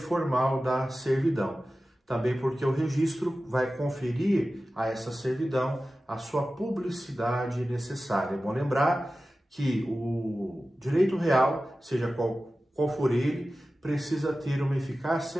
da servidão. Também porque o registro vai conferir a essa servidão a sua publicidade necessária. É bom lembrar que o direito real, seja qual for ele, precisa ter uma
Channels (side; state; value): both; normal; correlation 0.95